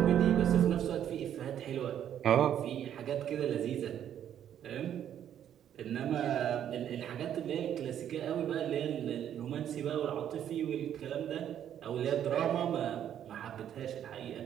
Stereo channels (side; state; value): left; quieter; 10.0 dB